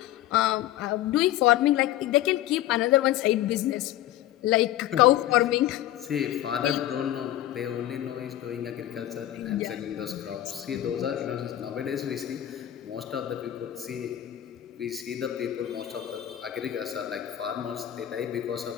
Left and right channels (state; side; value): quieter; right; 13.2 dB